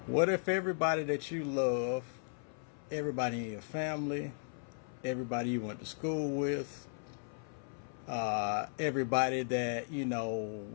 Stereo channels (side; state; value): right; silent; 54 dB below the other